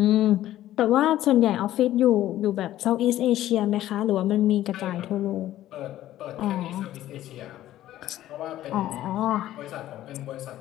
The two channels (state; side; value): quieter; right; 13.6 dB